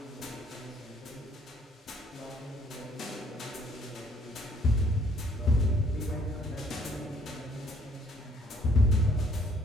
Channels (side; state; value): both; normal; correlation 0.63